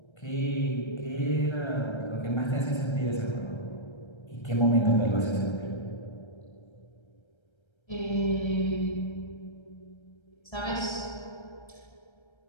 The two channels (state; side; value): late; right; 1.3 ms